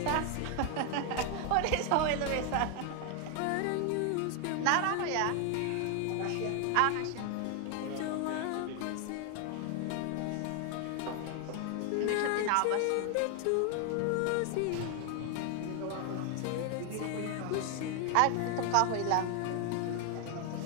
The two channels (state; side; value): different; both; correlation 0.00